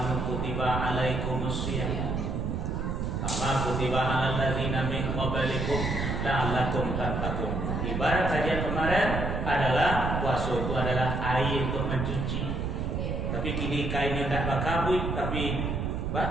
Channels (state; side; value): noise; right; rumble, 1 dB below the sound